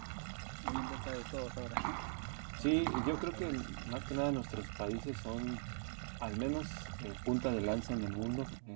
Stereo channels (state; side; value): silent; left; digital silence